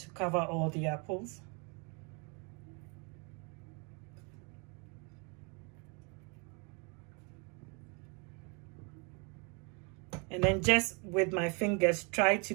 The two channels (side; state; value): left; quieter; 33.9 dB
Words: cover all the apples. And then just with my fingers, try to